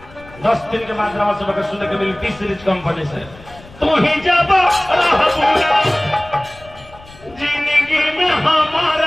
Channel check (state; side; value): noise; left; rumble, 22 dB below the sound